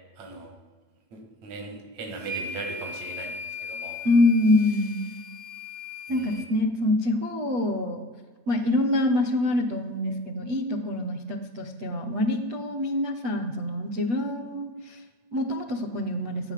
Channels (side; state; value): left; late; 8.7 ms